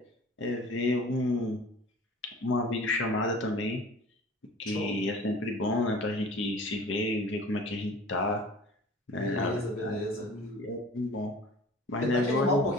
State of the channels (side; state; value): both; normal; correlation 0.45